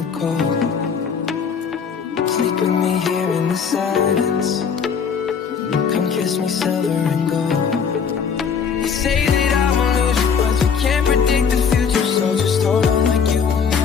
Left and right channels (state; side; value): quieter; right; 6.5 dB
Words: cold. Sleep with me here in the silence. Come kiss me silver and gold. You say that I won't lose you, but you can't predict the future. So just hold on like you will